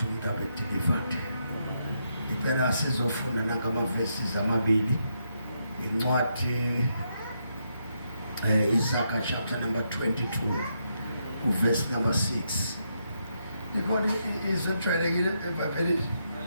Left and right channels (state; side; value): inverted; both; correlation -0.80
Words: umuntu abe delivered impela sizofunda nangamavesi amabili incwadi Isaiah chapter number 22 verse number 6 ikhona izwi ejwayelekile eBhayibhelini